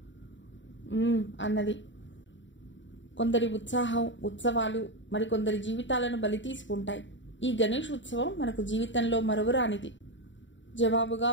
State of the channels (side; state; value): right; late; 0.54 ms